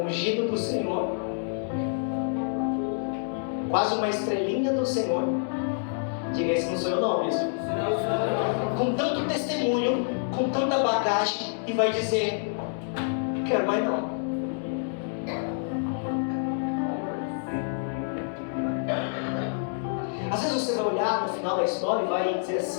ungido do Senhor, quase uma estrelinha do Senhor, diga: esse não sou eu não, bispo. Com tanto testemunho, com tanta bagagem, e vai dizer: quero mais não. Às vezes você vai olhar no final da história e vai dizer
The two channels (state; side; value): silent; right; digital silence